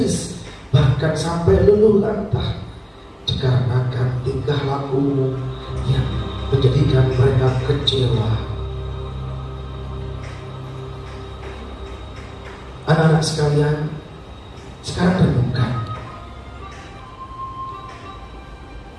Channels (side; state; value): both; identical; correlation 1.00